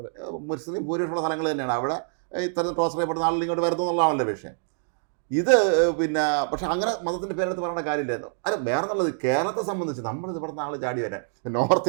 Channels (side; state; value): left; silent; digital silence